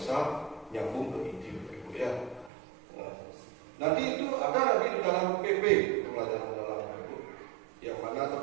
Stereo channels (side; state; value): left; drops out; at 2.5 s